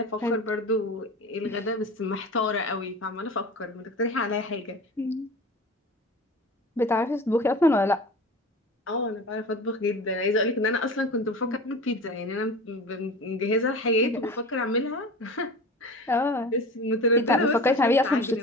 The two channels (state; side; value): normal; both; correlation 0.35